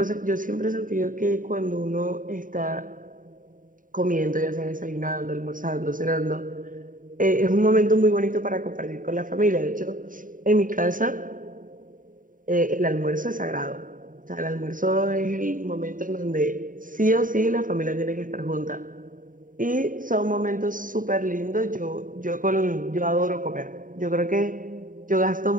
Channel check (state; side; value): late; left; 0.39 ms